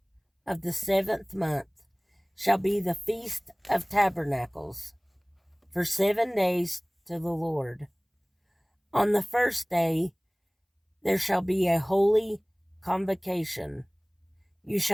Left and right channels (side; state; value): both; identical; correlation 1.00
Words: of the 7th month shall be the Feast of Tabernacles, for 7 days to the Lord. On the first day there shall be a holy convocation. You